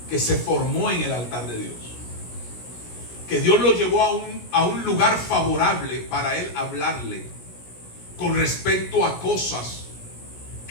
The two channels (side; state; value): right; late; 17 ms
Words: que se formó en el altar de Dios. Que Dios lo llevó a un lugar favorable para él hablarle con respecto a cosas